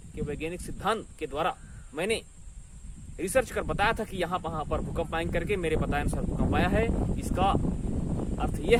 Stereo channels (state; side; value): identical; both; correlation 1.00